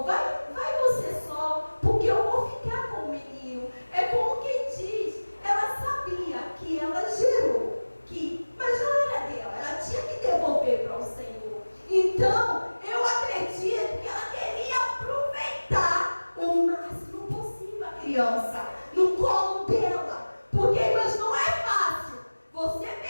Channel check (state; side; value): inverted; both; correlation -1.00